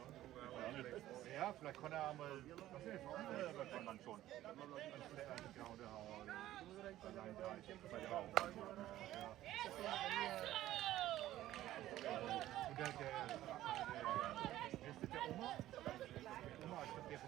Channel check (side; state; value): left; quieter; 14.2 dB